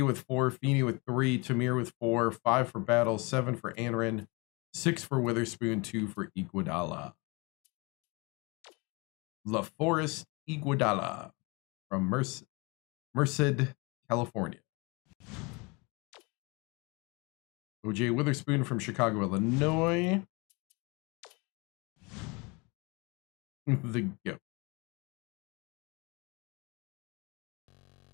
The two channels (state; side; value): quieter; right; 28.4 dB